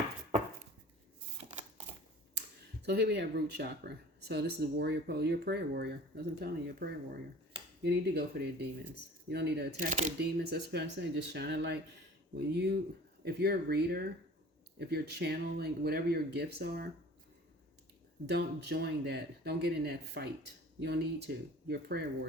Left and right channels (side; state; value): both; normal; correlation 0.44